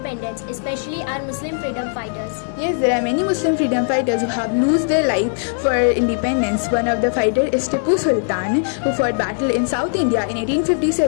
especially our Muslim freedom fighters? Yes, there are many Muslim freedom fighters who have lost their life for independence. One of the fighters is Tipu Sultan, who fought battle in South India in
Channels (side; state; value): right; silent; 66 dB below the other